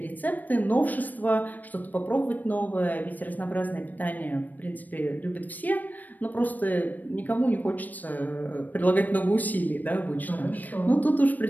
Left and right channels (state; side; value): late; right; 0.084 ms